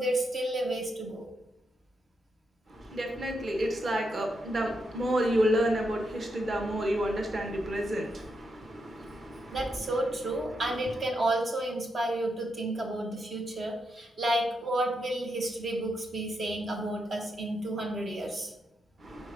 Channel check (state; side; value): normal; both; correlation 0.82